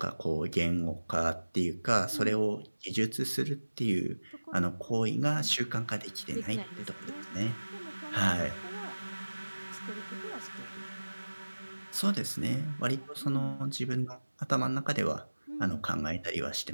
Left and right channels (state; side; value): inverted; both; correlation -1.00